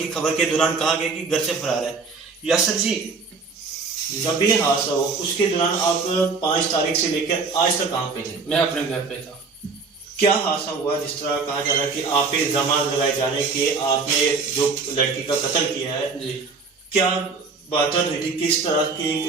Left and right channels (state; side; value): quieter; left; 4.5 dB